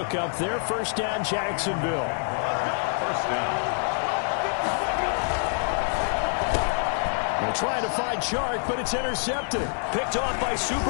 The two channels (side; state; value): right; silent; 56 dB below the other